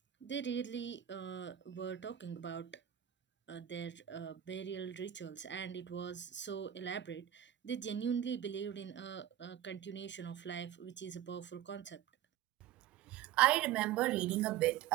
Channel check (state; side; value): quieter; left; 11.3 dB